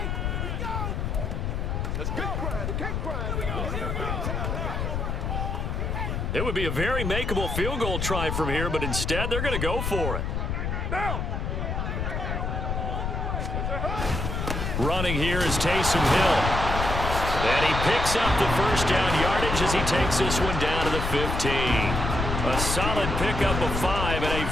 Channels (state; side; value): noise; left; rumble, 2 dB below the sound